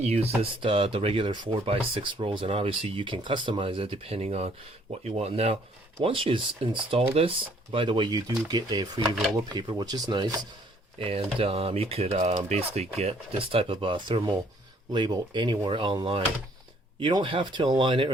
the regular 4x6 rolls, and obviously you can customize it depending on what you want. Now, once you install this, by the way, you do get a free roll of paper, which is nice, and you could basically get this type of thermal label anywhere online. You don't have to align it or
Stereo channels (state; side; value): normal; both; correlation 0.63